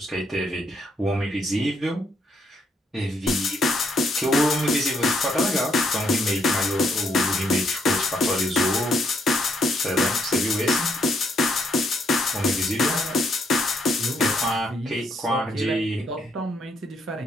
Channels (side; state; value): both; normal; correlation 0.73